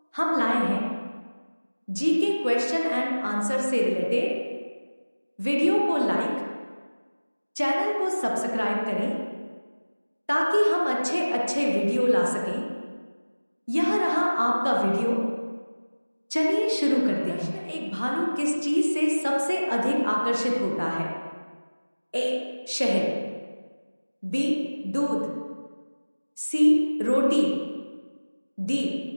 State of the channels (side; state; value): both; inverted; correlation -1.00